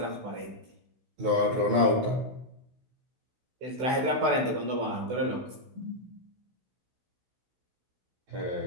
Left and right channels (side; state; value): left; late; 16 ms